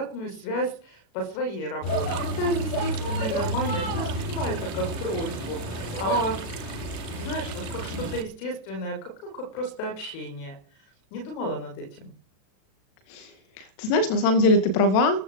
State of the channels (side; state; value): right; late; 36 ms